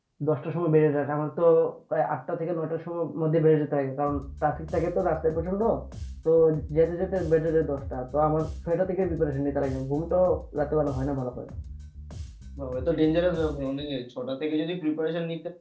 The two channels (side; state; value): both; identical; correlation 1.00